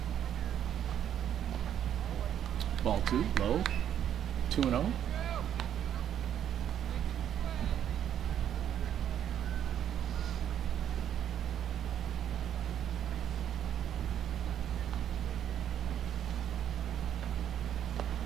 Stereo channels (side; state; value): left; quieter; 9.9 dB